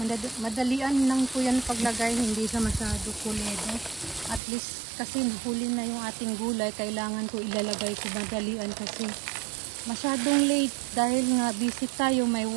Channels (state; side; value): drops out; left; at 4.4 s